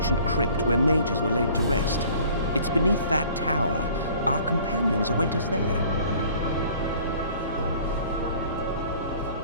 crypt where mages were laid to rest. It's beneath that tower. Our companions await us there.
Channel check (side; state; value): both; inverted; correlation -0.51